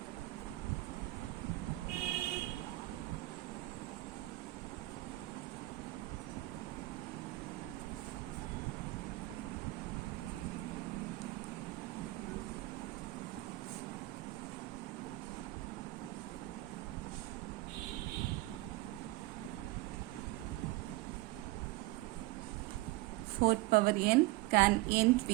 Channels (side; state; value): left; quieter; 19.8 dB